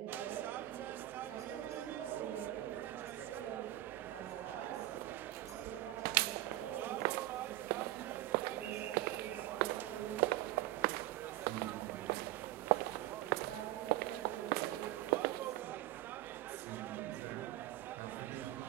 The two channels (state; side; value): quieter; left; 15.6 dB